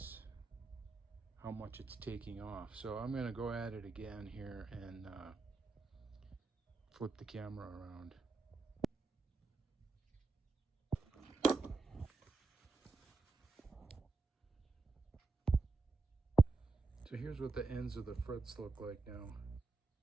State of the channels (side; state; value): left; quieter; 3.9 dB